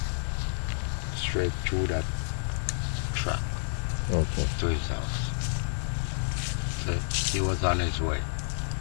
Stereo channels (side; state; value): right; silent; 58 dB below the other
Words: Straight through that track Okay. to his house. So he was on his way.